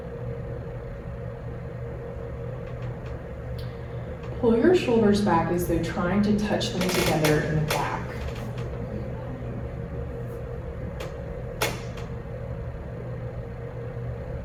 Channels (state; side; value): identical; both; correlation 1.00